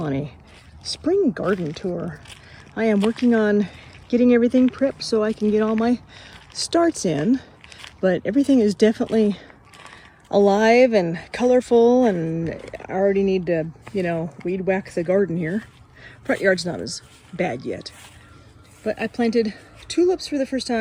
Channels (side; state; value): both; identical; correlation 1.00